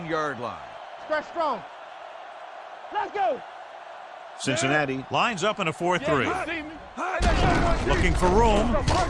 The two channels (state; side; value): identical; both; correlation 1.00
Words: line. Stretch strong. Let's go. Cincinnati lines up in a 4-3. Yeah, you see me. Hey, let's go, Looking for room.